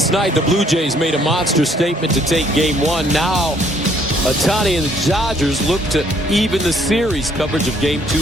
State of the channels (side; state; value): both; normal; correlation 0.64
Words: night, the Blue Jays made a monster statement to take Game 1. Now, Ohtani and the Dodgers look to even the series. Coverage of Game